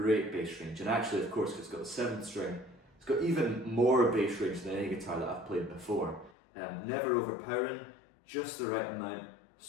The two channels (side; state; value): right; drops out; at 6.3 s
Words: bass range, and actually, of course, it's got the 7th string, it's got even more bass range than any guitar that I've played before. Never overpowering, just the right amount,